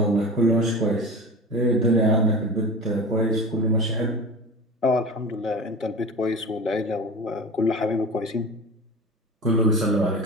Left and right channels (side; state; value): both; normal; correlation 0.33